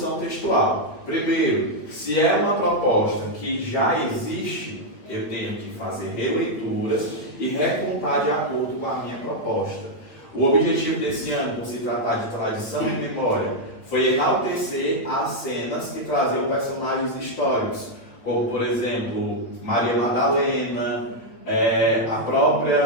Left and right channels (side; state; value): right; late; 9.1 ms